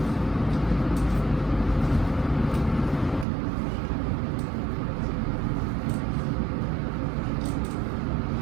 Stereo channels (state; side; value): drops out; left; at 3.2 s